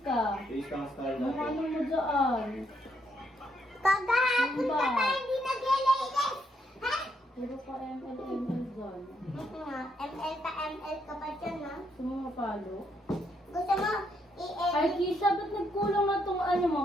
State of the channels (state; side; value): normal; both; correlation 0.75